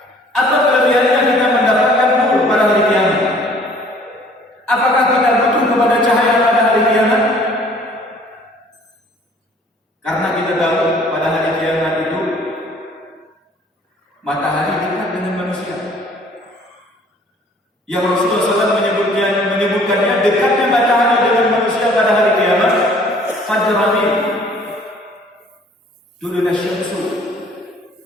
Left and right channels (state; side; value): normal; both; correlation 0.55